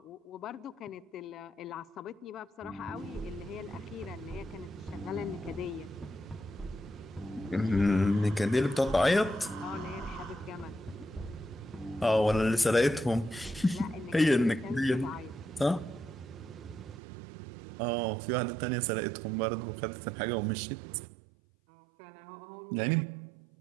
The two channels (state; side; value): drops out; left; at 17.0 s